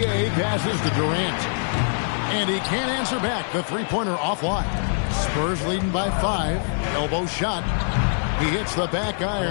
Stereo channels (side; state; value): right; silent; 63 dB below the other